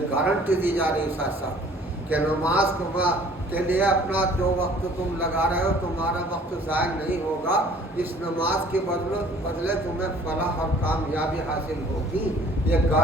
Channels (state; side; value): normal; both; correlation 0.54